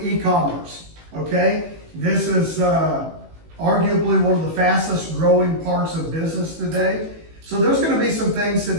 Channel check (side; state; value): left; late; 18 ms